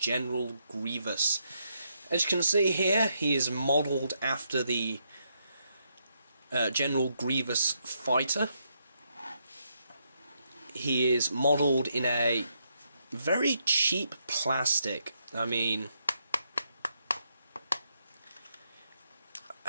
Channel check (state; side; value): inverted; both; correlation -0.78